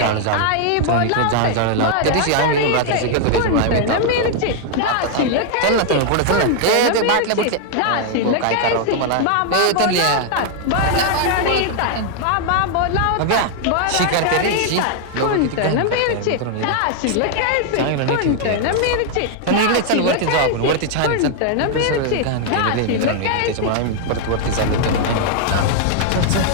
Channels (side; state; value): both; different; correlation 0.00